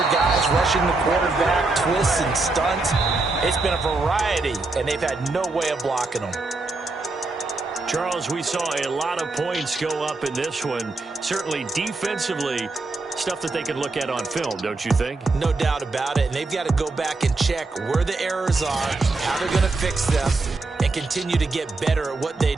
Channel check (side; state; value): left; quieter; 3.4 dB